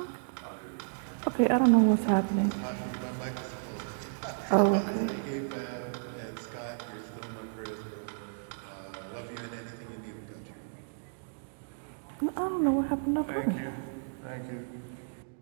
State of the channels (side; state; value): left; silent; digital silence